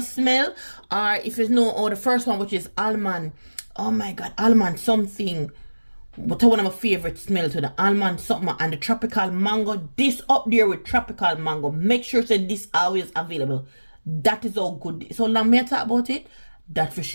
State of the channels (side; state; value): both; inverted; correlation -1.00